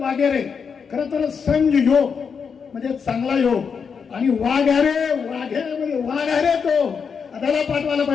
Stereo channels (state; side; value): quieter; right; 6.2 dB